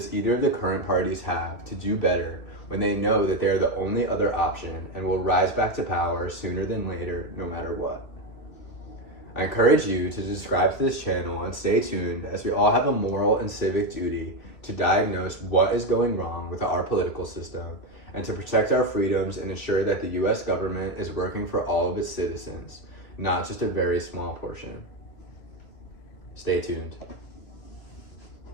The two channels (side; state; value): right; late; 2.5 ms